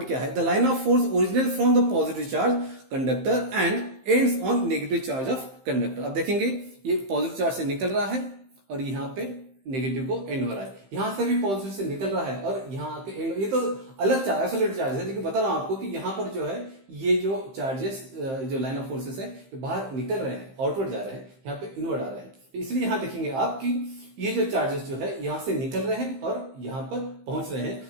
क्या है? The line of force originate from the positive charge conductor and ends on negative charge of conductor. आप देखेंगे ये पॉजिटिव चार्ज से निकल रहा है और यहां पे नेगेटिव को एंड हो रहा है। यहां से भी पॉजिटिव से निकल रहा है और यहां आके एंड। ये तो अलग चार्ज, आइसोलेटेड चार्ज है, लेकिन बता रहा हूं आपको कि यहां पर जो है ये जो चार्जेस, जो लाइन ऑफ फोर्सेस है, ये बाहर निकल रहे हैं, आउटवर्ड जा रहे हैं, यहाँ पे इनवर्ड आ रहे हैं। इसलिए यहां देखेंगे आप कि ये जो चार्जेस जो है यहां से निकल रहे हैं और यहां पर पहुंच रहे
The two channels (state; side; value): late; left; 15 ms